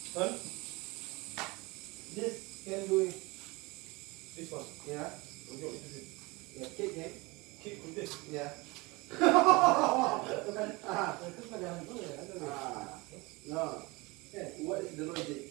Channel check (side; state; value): left; quieter; 24.5 dB